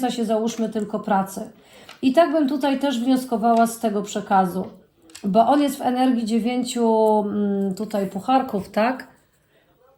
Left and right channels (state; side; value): identical; both; correlation 1.00